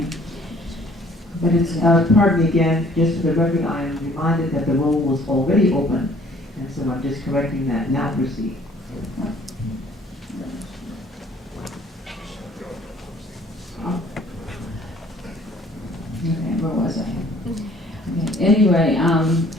but it's Pardon me again, just for the record, I am reminded that the roll was already open, and so I'm just correcting that. Now proceed. Okay, where was I? Okay. Anyway,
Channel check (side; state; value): both; normal; correlation 0.57